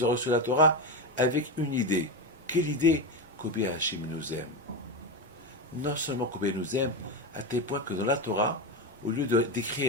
ont reçu la Torah, avec une idée. Quelle idée? Combien Hachem nous aime. Non seulement combien il nous aime, à tel point que dans la Torah, au lieu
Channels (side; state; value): both; normal; correlation 0.15